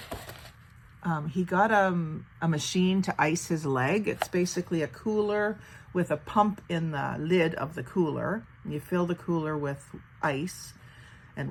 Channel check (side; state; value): both; identical; correlation 1.00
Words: he got a machine to ice his leg. It's basically a cooler with a pump in the lid of the cooler. You fill the cooler with ice